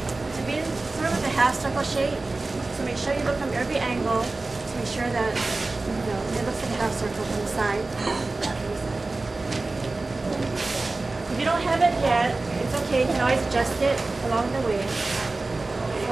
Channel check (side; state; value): left; quieter; 3.3 dB